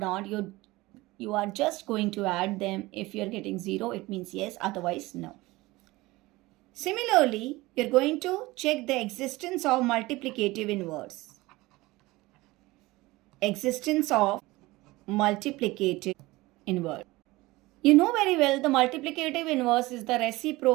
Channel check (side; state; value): left; quieter; 20.3 dB